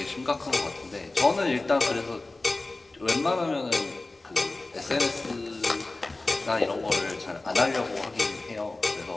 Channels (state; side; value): quieter; right; 3.1 dB